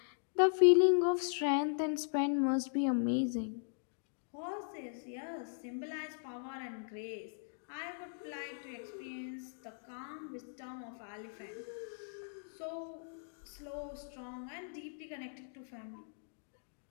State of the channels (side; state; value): right; silent; digital silence